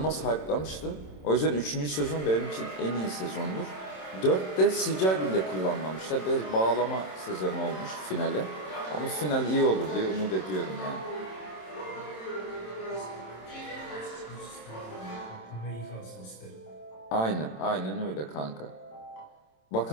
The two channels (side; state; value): right; late; 27 ms